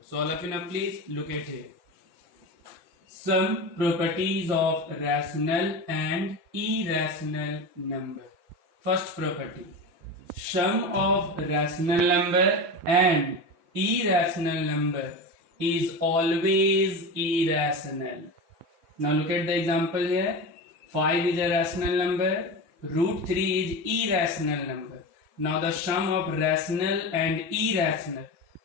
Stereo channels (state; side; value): late; left; 5.7 ms